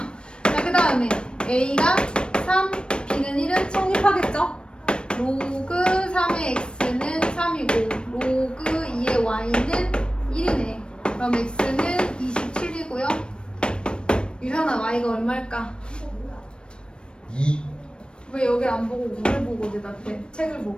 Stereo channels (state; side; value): late; right; 0.054 ms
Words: 자, 그 다음에 a가 3, b는 1은 성립하겠죠? 로그 3의 x는 3이고 로그 2의 y는 1이네. 그럼 x는 27이고요. 유현아, y가 얼마일까? 2. 왜 여기 안 보고 우를 보고 대답해? 책을